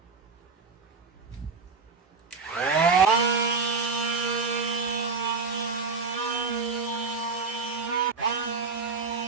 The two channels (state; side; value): quieter; left; 4.6 dB